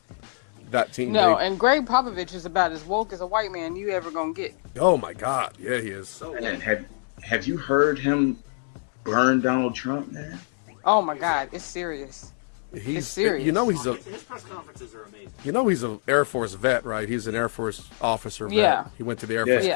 that team. No, and Greg Popovich is about as woke as a white man you ever gonna get. Oh my God, yeah, he is so woke. Have you heard him burn Donald Trump, man? Oh my Exactly. God, it's serious. He's serious. His press conferences are amazing. He's an Air Force vet, right? He's an Air Force officer. Vet. Yeah. He went to the Air Force Yeah.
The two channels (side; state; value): right; silent; digital silence